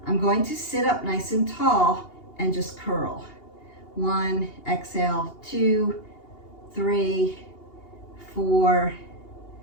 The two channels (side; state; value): right; late; 2.8 ms